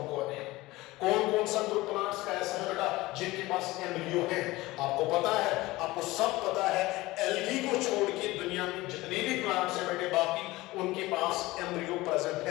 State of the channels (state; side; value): quieter; right; 19.5 dB